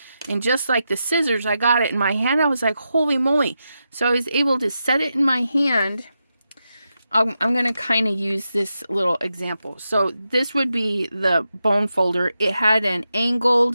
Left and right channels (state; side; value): inverted; both; correlation -0.88